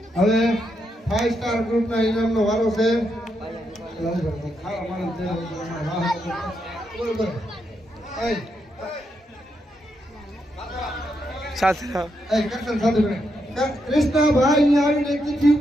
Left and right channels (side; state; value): both; normal; correlation 0.81